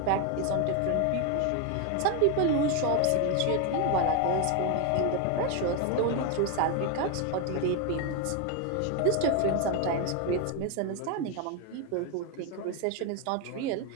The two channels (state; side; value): different; both; correlation 0.01